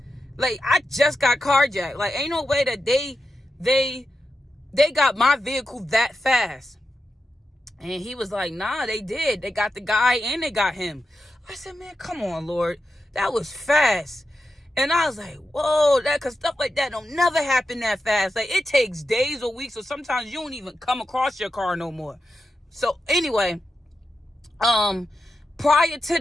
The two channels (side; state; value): both; normal; correlation 0.88